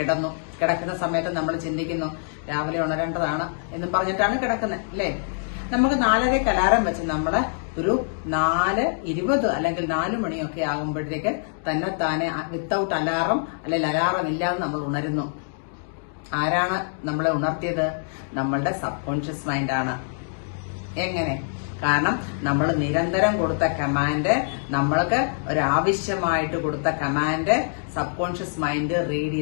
കിടക്കുന്ന സമയത്ത് നമ്മൾ ചിന്തിക്കുന്നു രാവിലെ ഉണരേണ്ടതാണ് എന്ന് പറഞ്ഞിട്ടാണ് കിടക്കുന്നത് അല്ലേ? നമുക്ക് 4:30 അലാറം വെച്ച് നമ്മള് ഒരു 4:20 അല്ലെങ്കിൽ 4 മണിയൊക്കെ ആകുമ്പോഴത്തേക്ക് തന്നെത്താനെ വിത്തൗട്ട് അലാറം അല്ലെങ്കിൽ അലാറം ഇല്ലാതെ നമ്മൾ ഉണരുന്നു. ആരാണ് നമ്മളെ ഉണർത്തിയത്? നമ്മളുടെ സബ് കോൺഷ്യസ് മൈൻഡാണ്. എങ്ങനെ? കാരണം നമ്മൾ നിരന്തരം കൊടുത്ത കമാൻഡ്, നമ്മൾക്ക് ഒരാവശ്യമായിട്ട് കൊടുത്ത command sub conscious mind read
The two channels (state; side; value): silent; right; digital silence